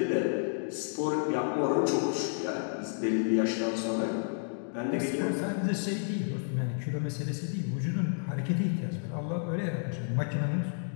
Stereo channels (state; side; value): silent; right; digital silence